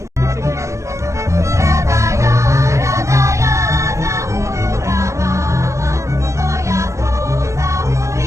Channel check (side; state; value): left; late; 0.15 ms